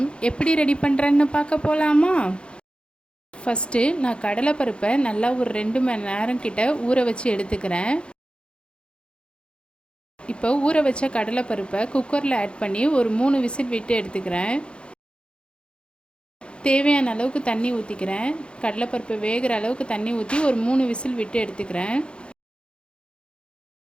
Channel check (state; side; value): late; right; 0.056 ms